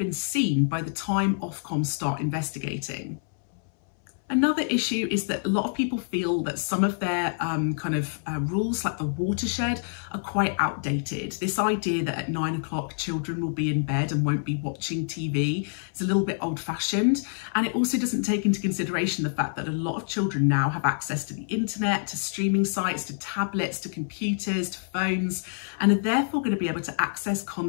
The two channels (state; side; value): silent; right; 60 dB below the other